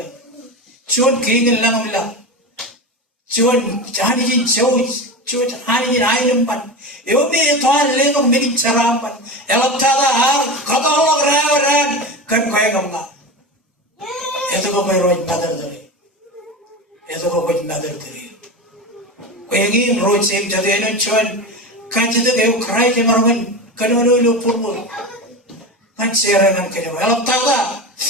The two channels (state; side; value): normal; both; correlation 0.23